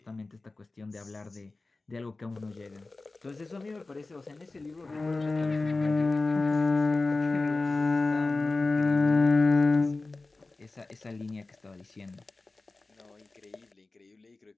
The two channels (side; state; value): right; quieter; 3.4 dB